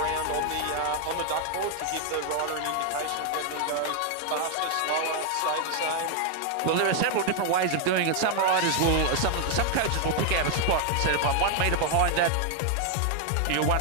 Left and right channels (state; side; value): different; both; correlation 0.00